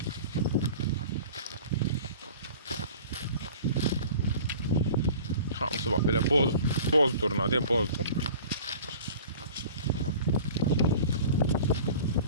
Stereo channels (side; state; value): both; inverted; correlation -0.42